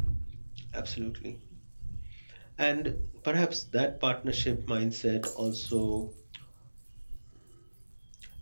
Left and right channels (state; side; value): inverted; both; correlation -1.00